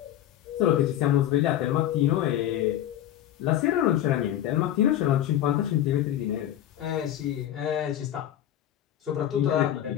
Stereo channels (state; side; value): quieter; right; 12.0 dB